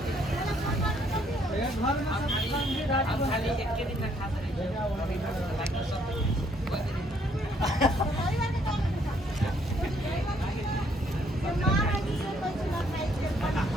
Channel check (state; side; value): normal; both; correlation 0.67